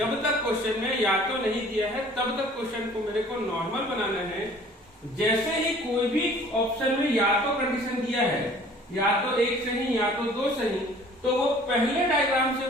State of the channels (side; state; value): both; normal; correlation 0.51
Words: तक क्वेश्चन में या तो नहीं दिया है तब तक क्वेश्चन को मेरे को नॉर्मल बनाना है। जैसे ही कोई भी ऑप्शन में या तो कंडीशन दिया है, या तो एक सही या तो दो सही, तो वो पहले डायग्राम से